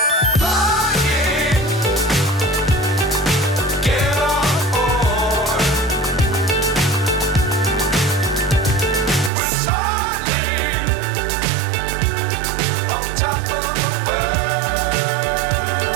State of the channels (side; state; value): left; drops out; at 9.3 s